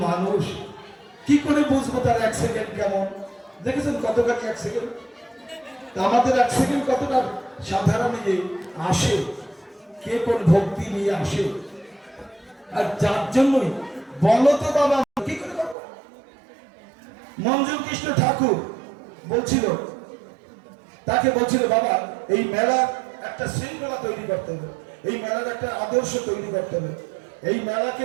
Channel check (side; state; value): left; drops out; at 15.8 s